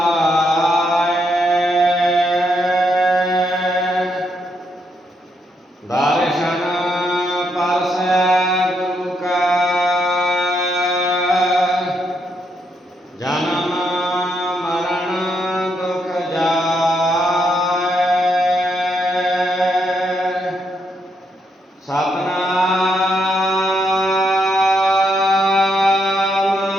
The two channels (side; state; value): both; normal; correlation 0.78